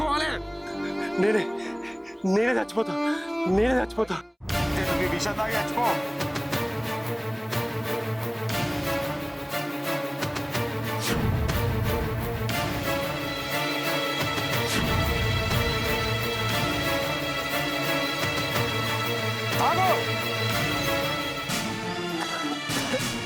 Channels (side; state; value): both; identical; correlation 1.00